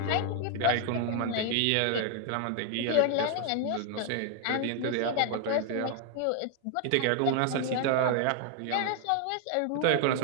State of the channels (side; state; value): both; different; correlation 0.00